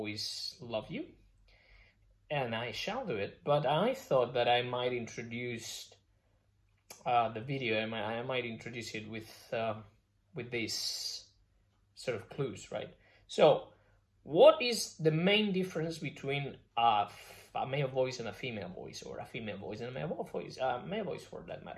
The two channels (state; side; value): identical; both; correlation 1.00